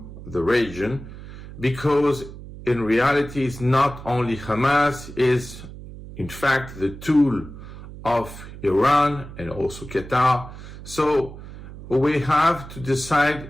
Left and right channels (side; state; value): right; noise; hum, 14 dB below the sound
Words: the region, because in reality it's not only Hamas, is in fact the tool of Iran and also Qatar. So we have to